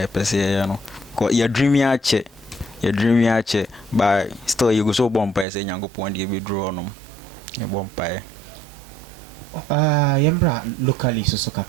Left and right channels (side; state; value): left; drops out; at 5.5 s